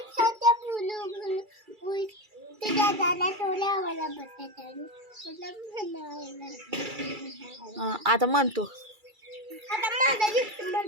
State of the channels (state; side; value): late; left; 2.3 ms